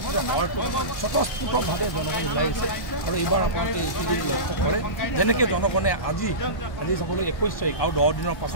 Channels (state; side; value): late; right; 1.5 ms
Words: যে হয়তো স্বতঃস্ফূৰ্তভাৱে জনগণ ওলাই আহিছে। আৰু এইবাৰ আপোনালোকে এইখিনি লক্ষ্য কৰে যেনেকৈ জনগণে আজি চাবলৈ 21 তাৰিখ আৰু 10 দিনৰ